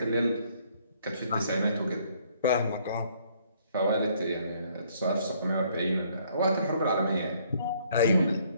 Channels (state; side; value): inverted; both; correlation -0.65